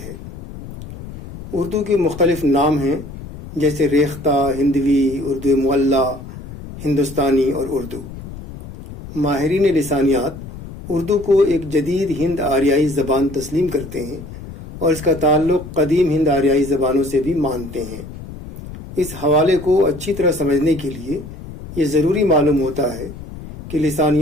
ہے۔ اردو کے مختلف نام ہیں جیسے ریختہ، ہندوی، اردو معلی، ہندوستانی اور اردو۔ ماہرین لسانیات اردو کو ایک جدید ہند آریائی زبان تسلیم کرتے ہیں اور اس کا تعلق قدیم ہند آریائی زبانوں سے بھی مانتے ہیں۔ اس حوالے کو اچھی طرح سمجھنے کے لیے یہ ضروری معلوم ہوتا ہے کہ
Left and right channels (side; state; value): left; noise; rumble, 13 dB below the sound